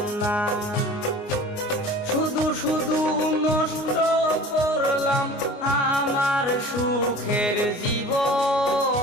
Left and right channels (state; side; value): late; right; 29 ms